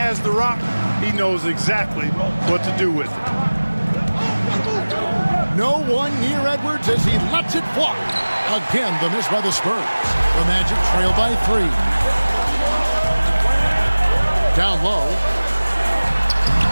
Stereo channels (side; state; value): both; inverted; correlation -1.00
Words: the rock, he knows exactly what to do with it. No one near Edwards as he lets it fly. Again, the miss by the Spurs. The Magic trail by 3. Down low.